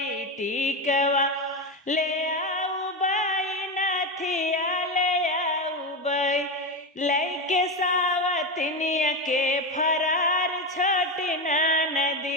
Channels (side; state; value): both; normal; correlation 0.15